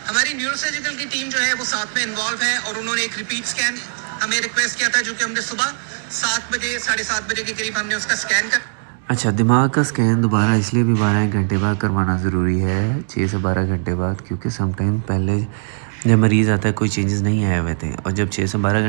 ہماری نیورو سرجیکل کی ٹیم جو ہے وہ ساتھ میں انوالو ہے اور انہوں نے ایک ریپیٹ سکین ہمیں ریکویسٹ کیا تھا جو کہ ہم نے صبح 7 بجے 7:30 بجے کے قریب ہم نے اس کا سکین کر. اچھا, دماغ کا سکین دوبارہ اس لیے بھی 12 گھنٹے بعد کروانا ضروری ہے, 6 سے 12 گھنٹے بعد, کیونکہ سم ٹائم پہلے جب مریض آتا ہے کوئی چینجز نہیں آئے ہوئے تھے اور جب 6 سے 12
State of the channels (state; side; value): silent; left; digital silence